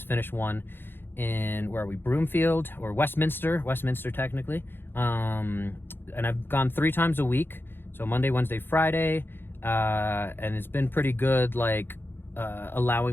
finished one in, where are we, Broomfield, or Westminster technically. And I've gone 3 times a week, so Monday, Wednesday, Friday, and it's been pretty good,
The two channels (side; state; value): right; late; 0.10 ms